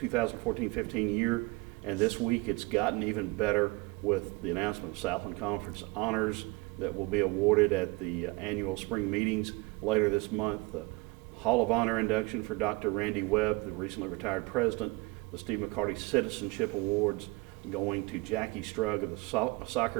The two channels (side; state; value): left; quieter; 24.4 dB